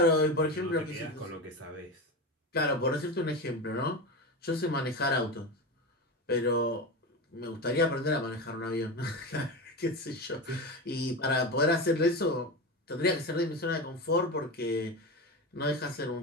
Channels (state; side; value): normal; both; correlation 0.22